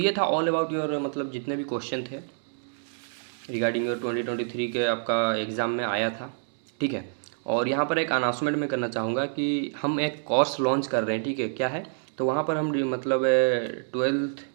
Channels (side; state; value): left; silent; digital silence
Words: था ऑल अबाउट योर मतलब जितने भी क्वेश्चन थे रिगार्डिंग योर 2023 के आपका एग्ज़ाम में आया था, ठीक है। और यहाँ पर एक अनाउंसमेंट मैं करना चाहूँगा कि हम एक कोर्स लॉन्च कर रहे हैं, ठीक है, क्या है, तो वहाँ पर हम मतलब 12th